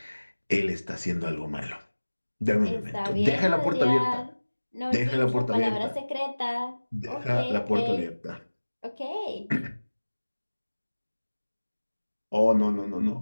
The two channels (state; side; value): inverted; both; correlation -1.00